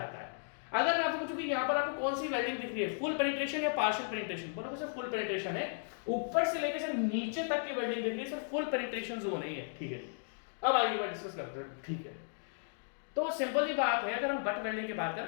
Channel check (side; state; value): right; silent; digital silence